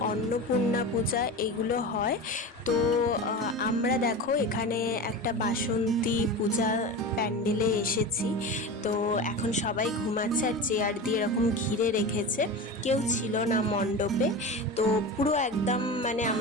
অন্নপূর্ণা পূজা এগুলো হয়। তো আমরা দেখো এখানে একটা বাসন্তী পূজা প্যান্ডেলে এসেছি। তো এখন সবাই ঘুমাচ্ছে আর চেয়ার দিয়ে এরকম ঘিরে রেখেছে, কেউ ছিল না মণ্ডপে। তো পুরো একদম মানে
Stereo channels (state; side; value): normal; both; correlation 0.27